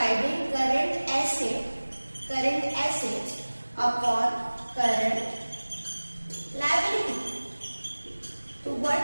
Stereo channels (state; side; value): inverted; both; correlation -1.00